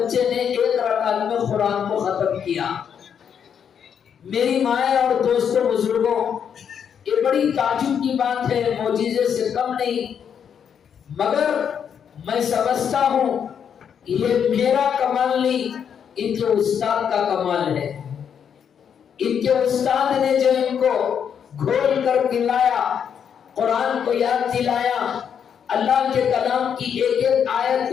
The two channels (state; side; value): quieter; right; 7.9 dB